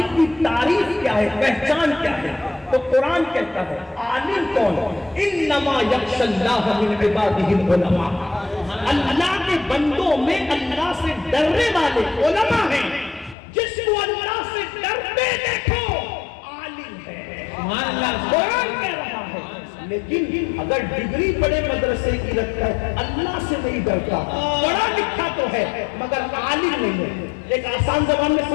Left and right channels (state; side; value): drops out; right; at 13.4 s